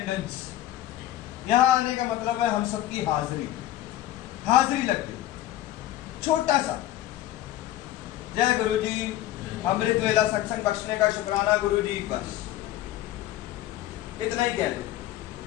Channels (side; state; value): right; quieter; 14.1 dB